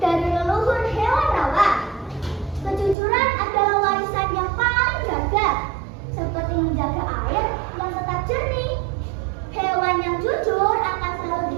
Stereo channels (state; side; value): drops out; left; at 3.0 s